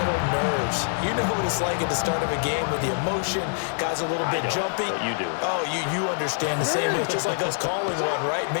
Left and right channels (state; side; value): silent; right; digital silence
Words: nerves. You know what it's like at the start of a game with the emotion. Guys are a little bit jumpy. You do. Oh, you understand the same. It's just like us calling one, right?